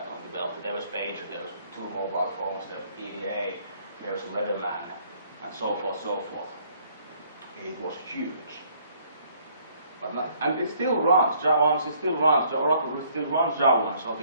on the belt. There was pager, there was 2 mobile phones, there was PDA, there was Leatherman, and so forth, so forth. It was huge. But and it still runs, Java, it still runs, Oracle still runs Java, so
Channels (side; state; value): both; inverted; correlation -0.63